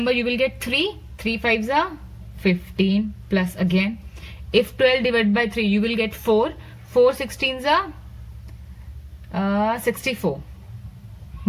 you will get 3. 3 5s are 15 plus again, if 12 divided by 3, you will get 4. 4 16s are 64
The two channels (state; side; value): identical; both; correlation 1.00